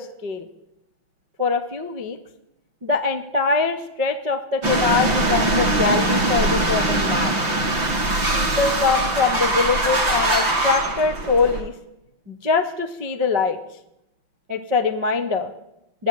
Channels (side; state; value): left; late; 5.9 ms